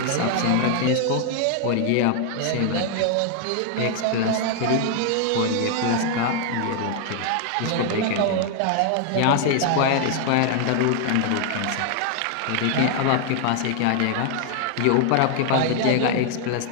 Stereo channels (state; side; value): different; both; correlation 0.00